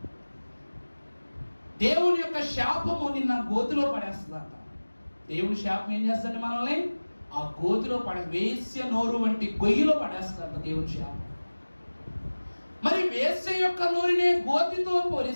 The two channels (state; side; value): inverted; both; correlation -1.00